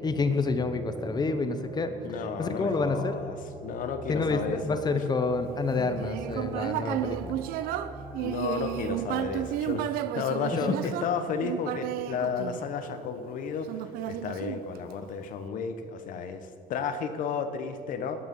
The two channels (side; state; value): both; normal; correlation 0.41